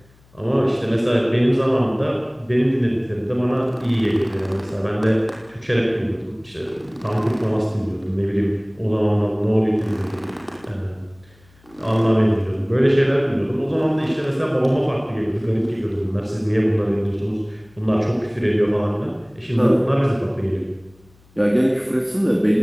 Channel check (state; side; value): noise; left; hum, 30 dB below the sound